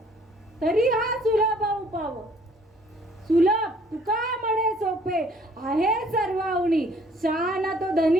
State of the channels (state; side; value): normal; both; correlation 0.60